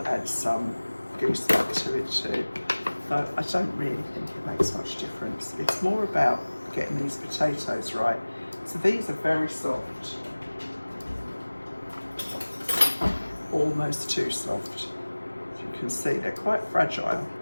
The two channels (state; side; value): inverted; both; correlation -1.00